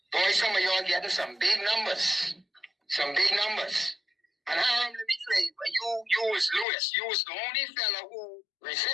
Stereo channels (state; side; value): drops out; right; at 6.7 s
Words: Boy, some of y'all getting some big numbers. Some big numbers. And let me tell you, you was Lewis. You was the only fella who